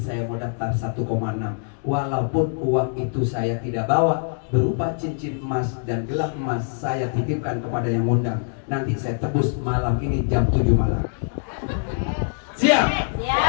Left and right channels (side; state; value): right; silent; digital silence